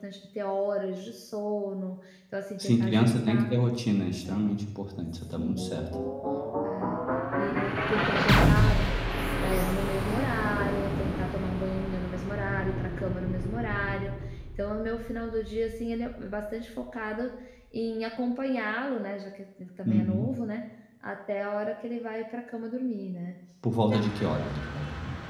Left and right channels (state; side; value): identical; both; correlation 1.00